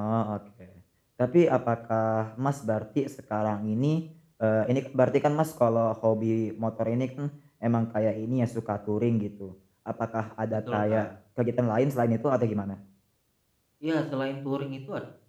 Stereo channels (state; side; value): identical; both; correlation 1.00